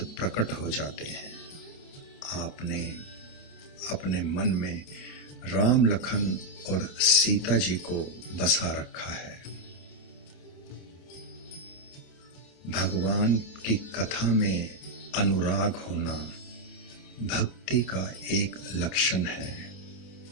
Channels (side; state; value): right; late; 28 ms